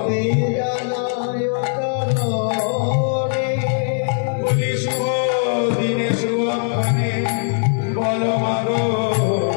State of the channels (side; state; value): right; silent; digital silence